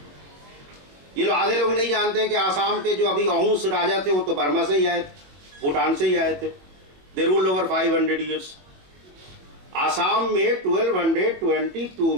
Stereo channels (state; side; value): late; left; 22 ms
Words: ये लोग आधे लोग नहीं जानते कि आसाम के जो अभी अहूस राजा थे वो तो बर्मा से ही आए थे, भूटान से ही आए थे। दे रूल्ड ओवर 500 ईयर्स। आसाम में 1222